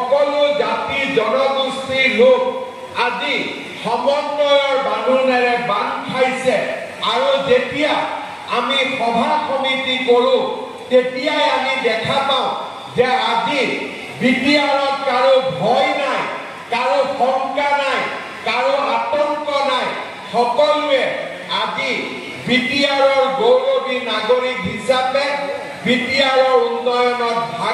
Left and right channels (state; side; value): identical; both; correlation 1.00